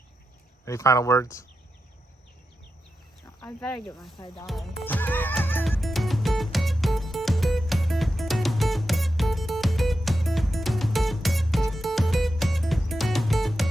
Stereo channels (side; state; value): both; normal; correlation 0.89